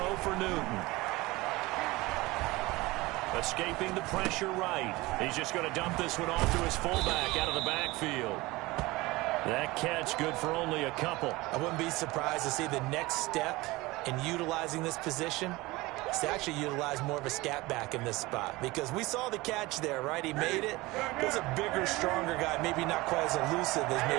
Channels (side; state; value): left; quieter; 21.0 dB